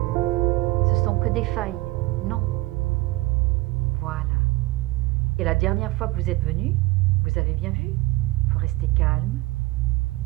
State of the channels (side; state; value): left; quieter; 20.0 dB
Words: Ce sont que des failles. Non. Voilà. Et la dernière fois que vous êtes venu, vous avez bien vu, il faut rester calme.